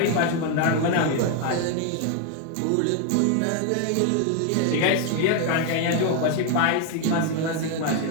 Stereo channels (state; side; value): different; both; correlation 0.01